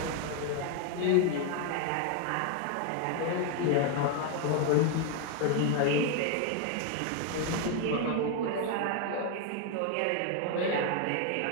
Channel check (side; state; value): both; different; correlation 0.01